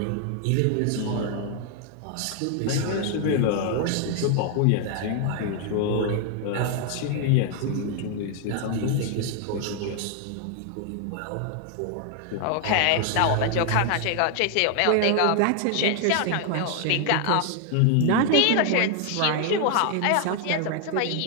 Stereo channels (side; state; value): both; different; correlation 0.00